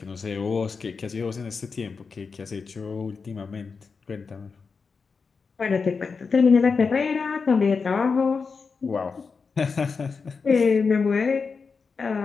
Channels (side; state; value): right; quieter; 5.0 dB